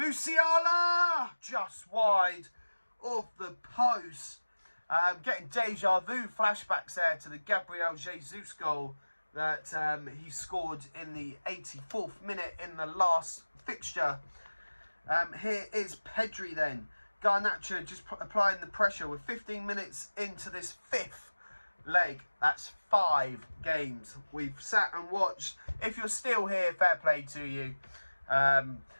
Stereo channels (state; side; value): inverted; both; correlation -1.00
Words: just wide of the post. Getting deja vu flashbacks there to the Gabriel Jesus goal that he scored in the 84th minute in the last fixture. Here is Pedri then. Garnacho just applying the pressure. We're 15 minutes into this 5th leg. That's 5 games we've sat and watched. If you're still here, fair play to you.